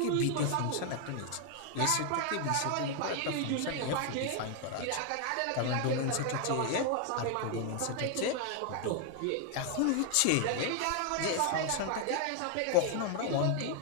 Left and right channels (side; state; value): both; different; correlation 0.00